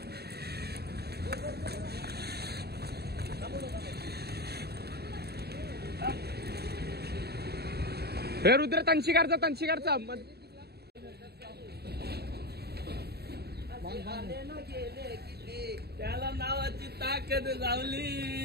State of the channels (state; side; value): late; left; 0.47 ms